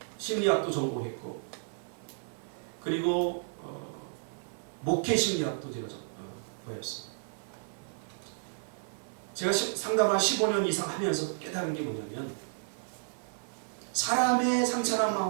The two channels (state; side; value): silent; left; 56 dB below the other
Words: 심리학도 전공했고 그리고 목회 심리학도 제가 배웠습니다. 제가 상담을 15년 이상 하면서 깨달은 게 뭐냐면 사람의 상처난